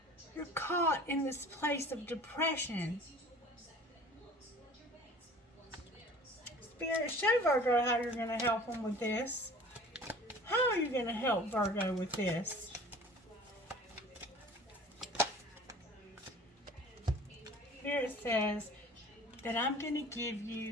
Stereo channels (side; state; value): both; normal; correlation 0.45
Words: You're caught in this place of depression. Spirit, show Virgo how you're going to help them with this. How are you going to help Virgo with this? Spirit says that I'm going to give